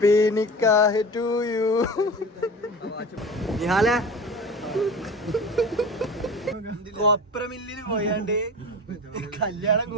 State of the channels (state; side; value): normal; both; correlation 0.33